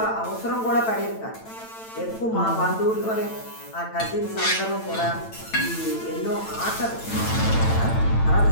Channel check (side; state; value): right; late; 9.0 ms